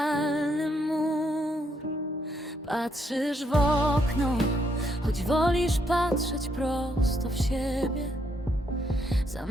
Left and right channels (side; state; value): both; normal; correlation 0.75